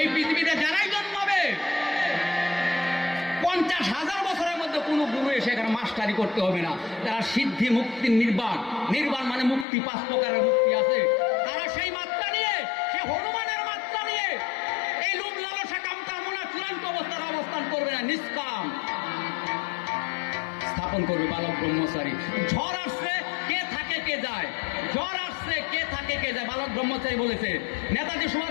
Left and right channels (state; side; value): drops out; right; at 9.7 s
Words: পৃথিবীতে যারাই জন্মাবে 50,000 বছরের মধ্যে কোনো গুরু এসে এখানে মাস্টারি করতে হবে না। তারা সিদ্ধি, মুক্তি, নির্বাণ, নির্বাণ মানে মুক্তি, 5 প্রকারের মুক্তি আছে। তারা সেই মাত্রা নিয়ে, সে হনুমানের মাত্রা নিয়ে এই লোভ লালসা কাম কামনা চূড়ান্ত অবস্থার অবস্থান করবে না, নিষ্কাম স্থাপন করবে বালক ব্রহ্মচারী। ঝড় আসছে, কে থাকে কে যায়, ঝড় আসছে, কে থাকে কে যায়, বালক ব্রহ্মচারী বলেছে। নেতাজি